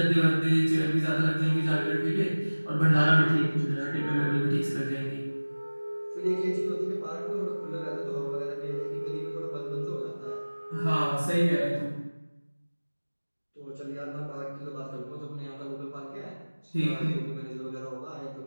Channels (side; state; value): both; inverted; correlation -1.00